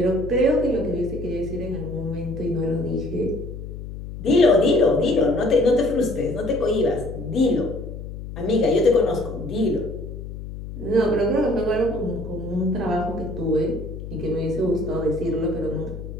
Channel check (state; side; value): noise; left; hum, 10 dB below the sound